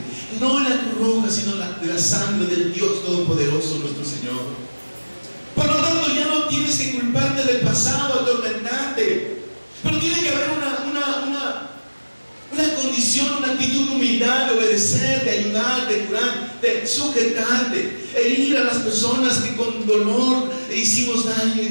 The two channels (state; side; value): inverted; both; correlation -1.00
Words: no la cruz roja, sino de la sangre del Dios Todopoderoso, nuestro Señor. Por lo tanto, ya no tienes que culparte del pasado, atormentarte. Pero tiene que haber una condición, una actitud de humildad, de obedecer, de ayudar, de curar, de sujetarte, e ir a las personas que con dolor le hicimos daño y